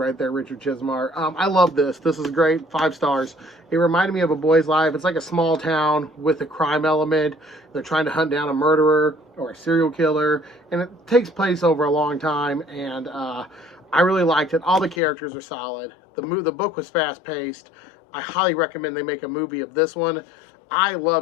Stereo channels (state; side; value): drops out; right; at 15.0 s